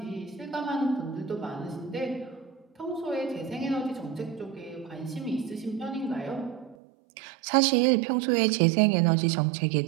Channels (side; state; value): left; drops out; at 6.8 s